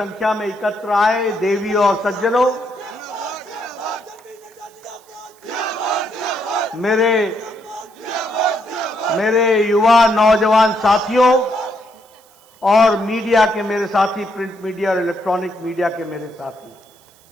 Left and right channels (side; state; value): right; noise; hiss, 29 dB below the sound